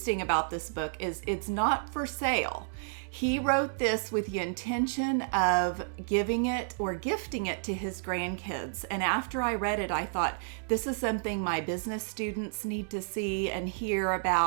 about this book is it's not for sale. He wrote this with the intention of giving it or gifting it to his grandkids. And after I read it, I thought, this is something my business students need to see and hear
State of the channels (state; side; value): silent; left; digital silence